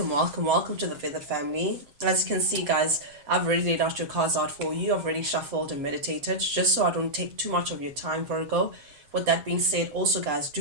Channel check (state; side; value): late; left; 7.3 ms